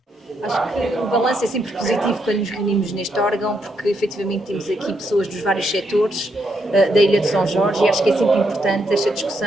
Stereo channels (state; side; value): normal; both; correlation 0.78